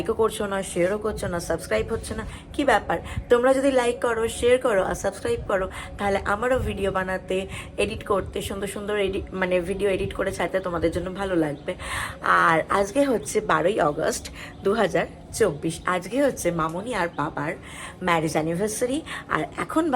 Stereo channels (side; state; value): both; identical; correlation 1.00